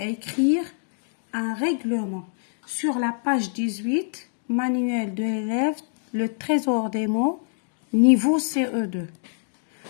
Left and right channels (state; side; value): silent; right; digital silence